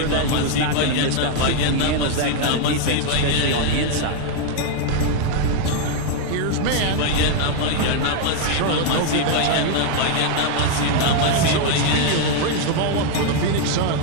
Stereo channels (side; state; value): both; different; correlation 0.01